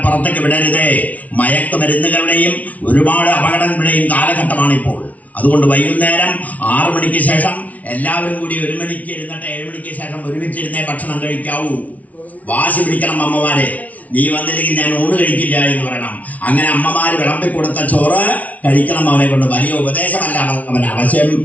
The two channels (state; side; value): late; right; 0.070 ms